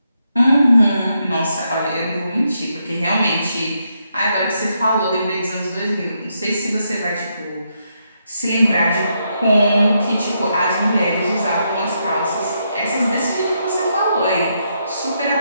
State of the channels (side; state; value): both; inverted; correlation -0.80